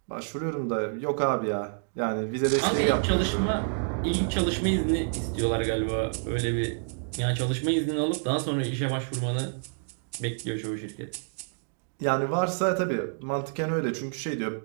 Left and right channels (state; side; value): silent; left; digital silence